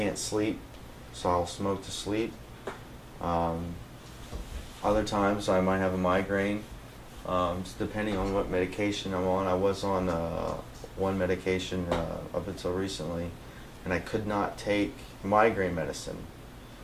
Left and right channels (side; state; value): both; identical; correlation 1.00